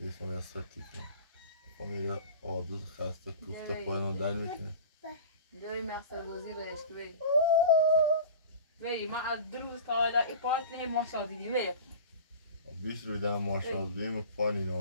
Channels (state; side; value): inverted; both; correlation -0.37